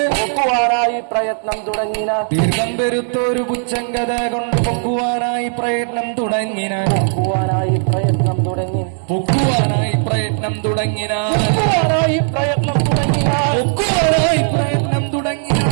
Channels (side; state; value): left; silent; 68 dB below the other